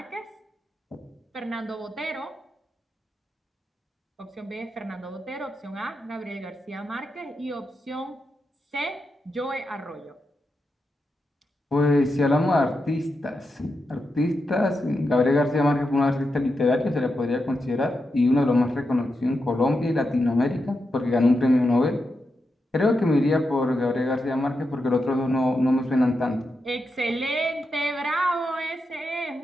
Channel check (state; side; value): normal; both; correlation 0.87